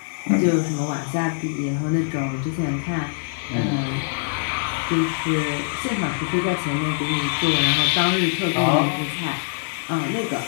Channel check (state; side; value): silent; right; 63 dB below the other